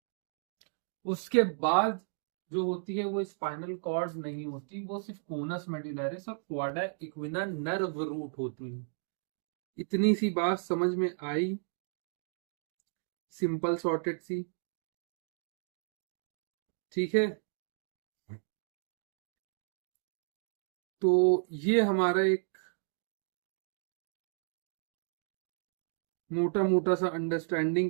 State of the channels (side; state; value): left; silent; digital silence